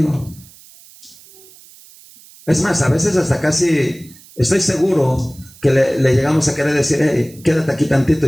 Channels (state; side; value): noise; right; hiss, 23 dB below the sound